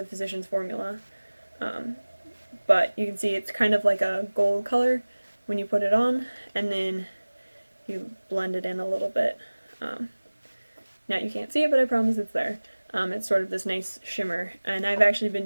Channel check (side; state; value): both; inverted; correlation -1.00